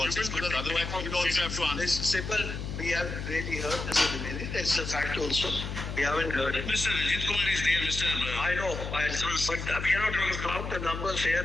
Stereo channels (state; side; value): noise; left; hum, 6 dB below the sound